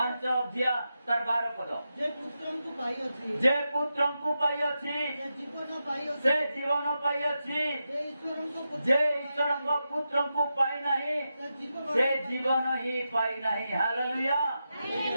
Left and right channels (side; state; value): both; inverted; correlation -0.89